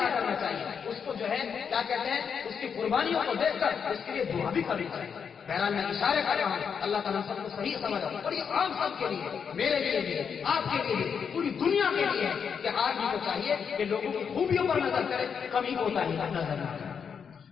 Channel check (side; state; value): right; quieter; 6.8 dB